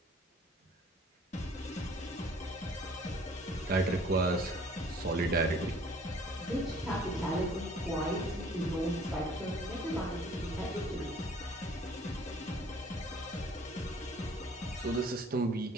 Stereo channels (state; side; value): normal; both; correlation 0.55